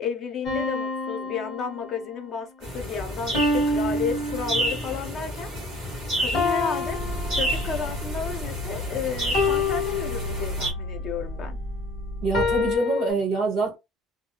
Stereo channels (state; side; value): normal; both; correlation 0.50